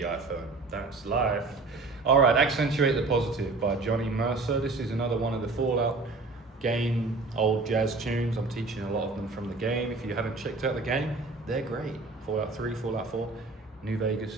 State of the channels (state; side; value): quieter; left; 3.6 dB